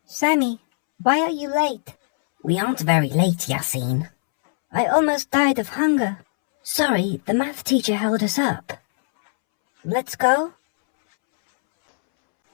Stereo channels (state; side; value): silent; right; 65 dB below the other